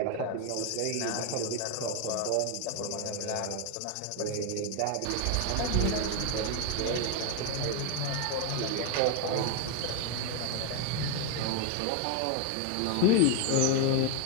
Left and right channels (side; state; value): both; different; correlation 0.01